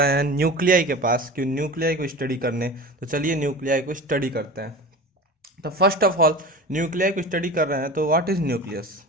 हैं न्यूक्लियाई के पास, क्यों न्यूक्लियाई को स्टडी करने। तो चलिए न्यूक्लियाई को स्टडी करते हैं। तो फर्स्ट ऑफ ऑल न्यूक्लियाई को स्टडी कर रहे हैं, तो व्हाट इज न्यूक्लियस?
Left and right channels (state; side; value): normal; both; correlation 0.33